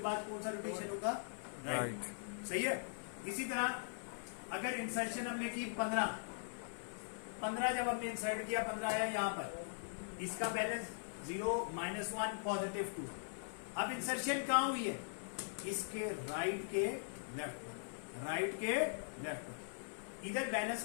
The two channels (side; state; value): right; silent; 50 dB below the other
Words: बाद कौन सा रोटेशन होगा, राइट। सही है। इसी तरह अगर इंसर्शन हमने की 15 जब हमने इंसर्ट किया 15 आया यहां पर, इसका बैलेंस 0 माइनस 1 +2। अब इंसर्शन कहां हुई है, इसके राइट के लेफ्ट पर, राइट के लेफ्ट पर। इधर